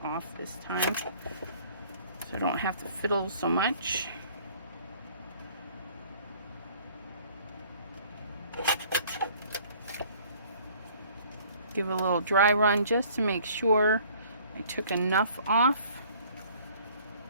off this time, so I don't have to fiddle so much. Give it a little dry run just to make sure I took enough off.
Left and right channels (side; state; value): both; inverted; correlation -0.55